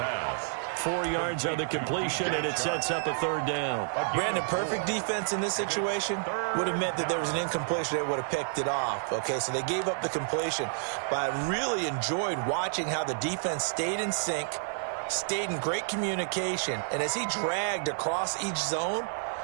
4 yards on the completion, and it sets up a 3rd down. Brandon, perfect defense in this situation would have meant that there was an incompletion. They would have picked it off. Okay, so they gave up the completion. But I really enjoyed watching how the defense stayed in sync, stayed in great communication. And as he dragged across each zone,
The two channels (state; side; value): silent; left; 58 dB below the other